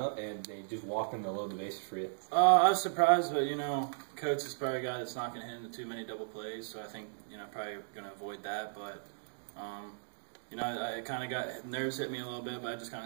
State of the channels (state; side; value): silent; left; digital silence